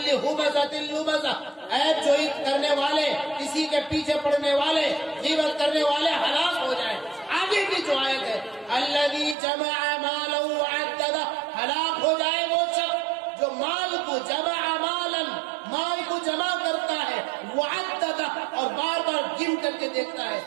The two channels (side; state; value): left; drops out; at 9.3 s